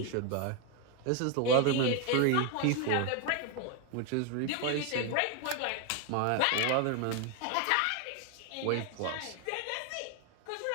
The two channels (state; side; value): different; both; correlation 0.01